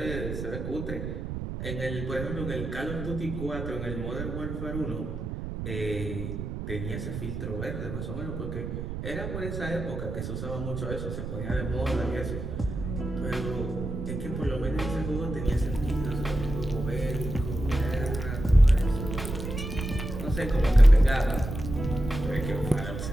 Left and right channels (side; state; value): right; noise; rumble, 5 dB below the sound